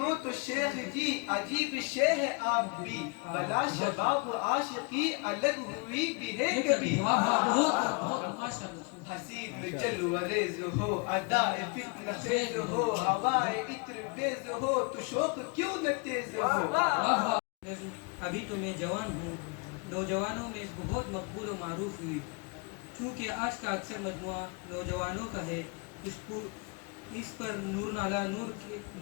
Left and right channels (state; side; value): quieter; right; 30.5 dB